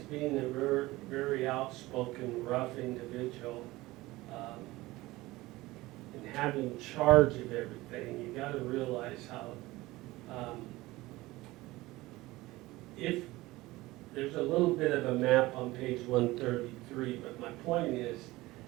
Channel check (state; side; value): quieter; left; 19.3 dB